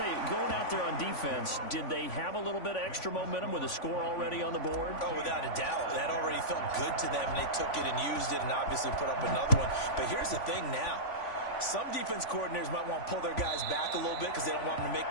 you, going out there on defense, did they have a little bit of extra momentum with a score already on the board? Oh, without a doubt. That already felt good to them, and they took it and used it and obviously put up another one. But here's the thing now. Some defense coordinators might want to pull their guys back a little bit because they don't want them to make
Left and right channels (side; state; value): right; late; 3.5 ms